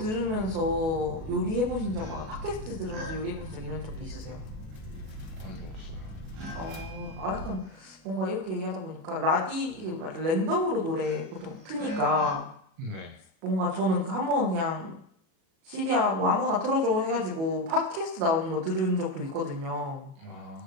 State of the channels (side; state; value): left; late; 37 ms